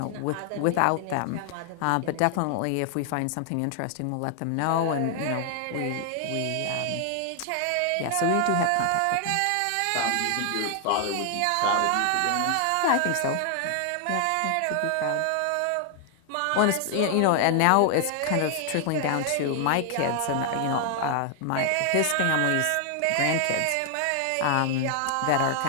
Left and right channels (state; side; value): different; both; correlation 0.00